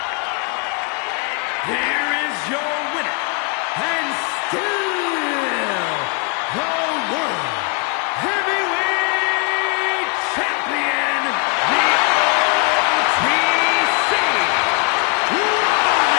Here is your winner, and still the World Heavyweight Champion, the OTC, Roman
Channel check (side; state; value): right; quieter; 32.8 dB